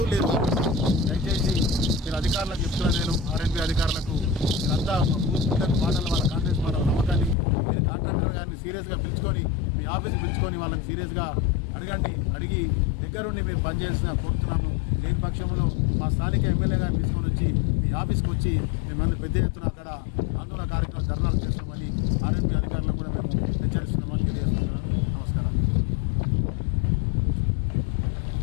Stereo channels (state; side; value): drops out; right; at 7.4 s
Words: లేరు. దయచేసి మీరు అధికారులకు చెప్తున్నాను, నేను ఆర్ఎన్బి అధికారులకు మీరంతా పూర్తిగా మాటలు, వాళ్ళ కాంగ్రెస్ మాటల నమ్మకాన్ని మీరు కాంట్రాక్టర్ గారిని సీరియస్గా పిలుచుకొని మీ ఆఫీస్కి పిలుచుకొని వాళ్ళని సీరియస్గా అడిగి దగ్గరుండి మీరు పనిచేసిన కోరుతున్నాము. లేని పక్షంలో మా స్థానిక ఎమ్మెల్యే గారిని తీసుకొని వచ్చి మీ ఆఫీస్కి వచ్చి మిమ్మల్ని పెద్ద ఎత్తున అక్కడ ఆందోళన కార్యక్రమం ధర్నాలు చేస్తామని